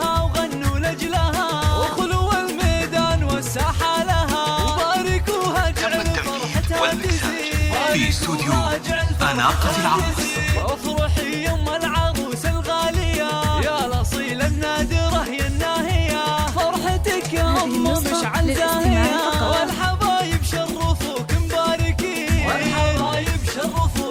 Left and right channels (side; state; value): both; identical; correlation 1.00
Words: وغنوا لاجلها، وخلوا الميدان والساحه لها، وباركوها اجعل فرحتها تزيد في استوديو أناقة العروس. افرحي يم العروس الغاليه يا الاصيله النادره يا الناهيه، فرحتك يا ام مشعل زاهيه، والحبايب شرفوك مباركين، والحبايب